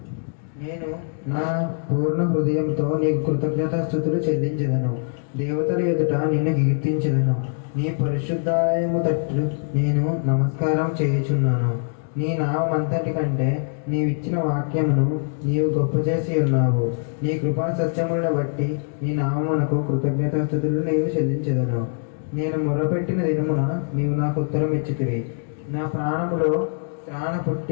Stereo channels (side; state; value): right; silent; 63 dB below the other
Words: నేను నా పూర్ణ హృదయంతో నీకు కృతజ్ఞతాస్తుతులు చెల్లించెదను. దేవతల ఎదుట నిన్ను కీర్తించెదను. నీ పరిశుద్ధాలయము తట్టు నేను నమస్కారం చేయుచున్నాను. నీ నామంతటి కంటే నీవిచ్చిన వాక్యమును నీవు గొప్ప చేసి ఉన్నావు. నీ కృపా సత్యములను బట్టి నీ నామమునకు కృతజ్ఞతాస్తుతులు నీవు చెల్లించెదను. నేను మొరపెట్టిన దినమున నీవు నాకు ఉత్తరం ఇచ్చితివి. నా ప్రాణములో త్రాణ